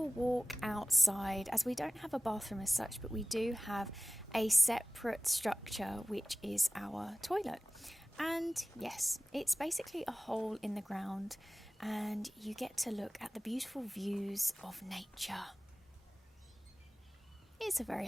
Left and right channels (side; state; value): both; normal; correlation 0.98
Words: walk outside, as we don't have a bathroom as such, but we do have a separate structure, which is our toilet. And yes, it's basically a hole in the ground, and you get to look at the beautiful views of nature. It's a very